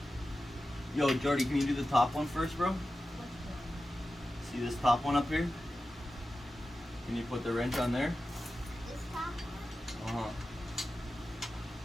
Yo, Jordy, can you do the top one first, bro? See this top one up here? Can you put the wrench on there? This top one.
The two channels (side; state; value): both; normal; correlation 0.93